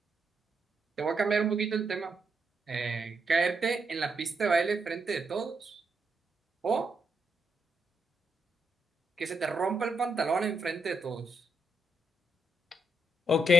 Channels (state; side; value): normal; both; correlation 0.80